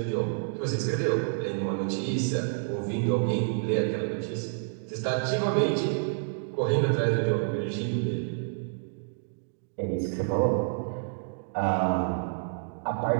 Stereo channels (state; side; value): silent; left; digital silence